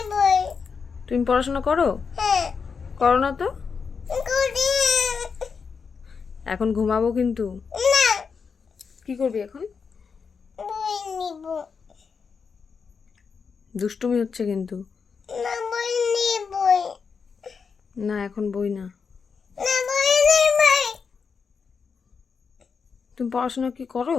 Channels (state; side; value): quieter; right; 5.7 dB